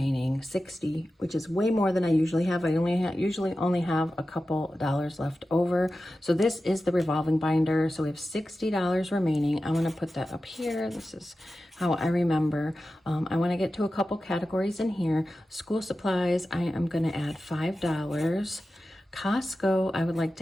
60, which is way more than I usually have. I usually only have a couple dollars left over. So this is the revolving binder. So we have $60 remaining. I'm gonna put that up here. This is how I remember. I wanna get to a couple categories in here. School supplies, I am gonna add $5. Costco, I would like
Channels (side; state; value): both; normal; correlation 0.93